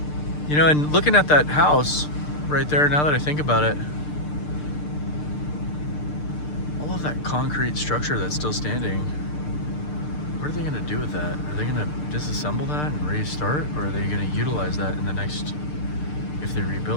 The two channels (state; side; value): late; right; 6.7 ms